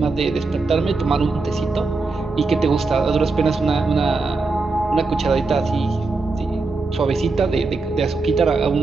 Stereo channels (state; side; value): quieter; left; 3.8 dB